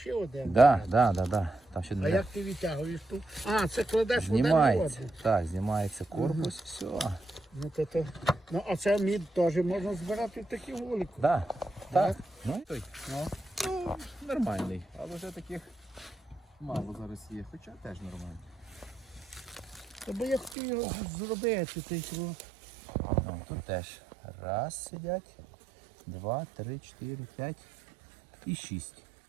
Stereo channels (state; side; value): drops out; left; at 20.6 s